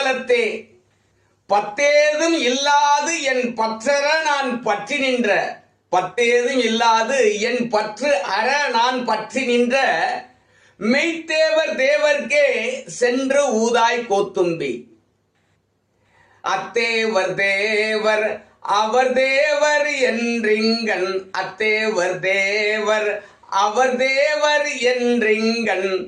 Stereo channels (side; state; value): both; identical; correlation 1.00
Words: பத்தேதும் இல்லாது என் பற்றற நான் பற்றி நின்ற பத்தேதும் இல்லாது என் பற்று அற நான் பற்றி நின்ற மெய்த்தேவர் தேவர்க்கே சென்று ஊதாய் கோத்தும்பி. அத்தேவர் தேவர் அவர் தேவர் என்றிங்கன் அத்தேவர் தேவர் அவர் தேவர் என்றிங்கன்